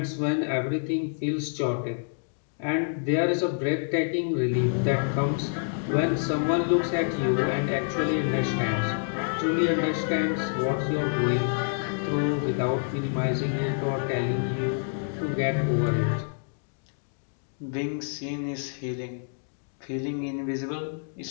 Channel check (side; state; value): right; silent; digital silence